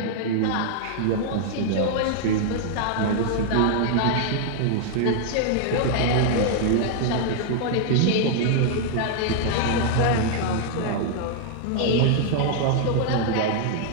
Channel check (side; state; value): both; different; correlation -0.01